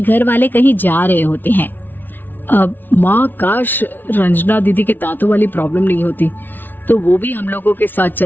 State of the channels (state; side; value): late; right; 0.091 ms